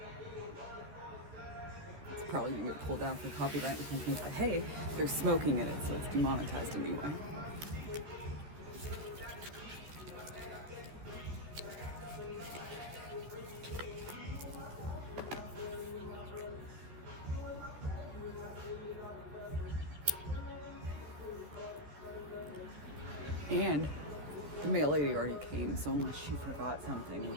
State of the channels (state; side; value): late; left; 13 ms